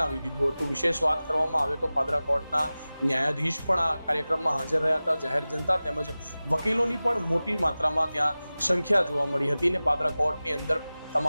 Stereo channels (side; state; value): both; inverted; correlation -0.97